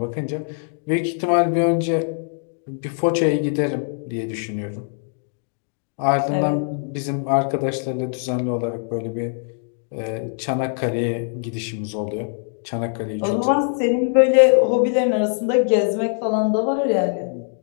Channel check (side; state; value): right; silent; 64 dB below the other